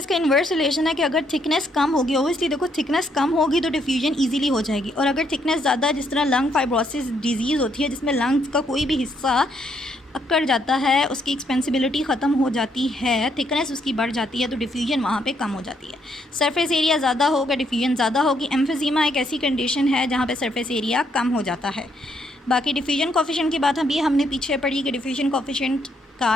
इन्वर्स रिलेशन है कि अगर थिकनेस कम होगी, ओबियसली देखो थिकनेस कम होगी तो डिफ्यूजन इजीली हो जाएगी, और अगर थिकनेस ज़्यादा, जिस तरह लंग फाइब्रोसिस डिजीज़ होती है जिसमें लंग्स का कोई भी हिस्सा अकड़ जाता है, उसकी एक्सपेंसिबिलिटी ख़त्म हो जाती है, थिकनेस उसकी बढ़ जाती है, तो डिफ्यूजन वहाँ पे कम हो जाती है। सरफेस एरिया ज़्यादा होगा, डिफ्यूजन ज़्यादा होगी। एम्फीज़ीमा एक ऐसी कंडीशन है जहाँ पे सरफेस एरिया कम हो जाता है। बाकी डिफ्यूजन कोफिशिएंट की बात अभी हमने पीछे पढ़ी कि डिफ्यूजन कोफिशिएंट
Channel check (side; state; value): both; normal; correlation 0.73